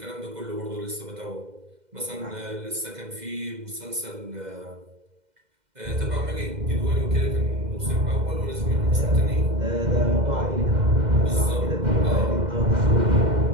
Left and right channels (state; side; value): late; left; 2.1 ms